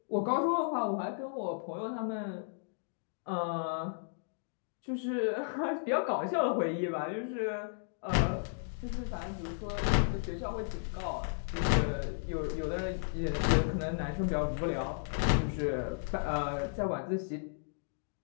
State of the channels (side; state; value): right; silent; digital silence